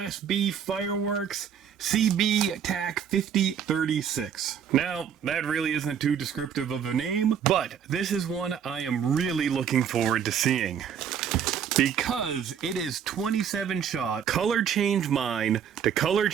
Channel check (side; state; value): left; quieter; 8.2 dB